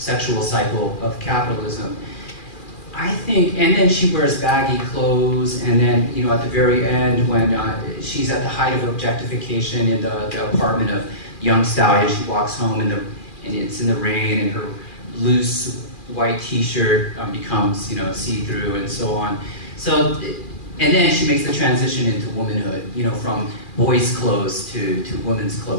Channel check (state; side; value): late; right; 2.4 ms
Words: cycle of capitalism. I think, and then she wears baggy clothes, and then, at the very end when she's at the height of objectification in the apartment of young stallion, she walks home and it's in the rain, and her loose white t-shirt becomes, see-through and so on. So, and then she makes the transition into womanhood, from boys' clothes to women's